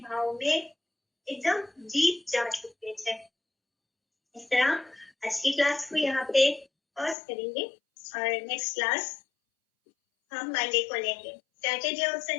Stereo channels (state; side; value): drops out; right; at 7.2 s